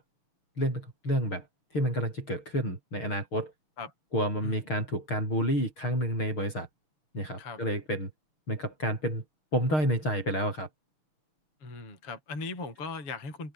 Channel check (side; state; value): right; late; 6.5 ms